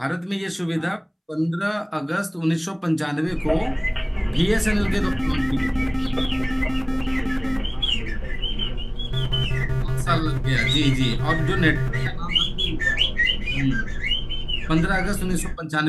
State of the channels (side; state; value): both; identical; correlation 1.00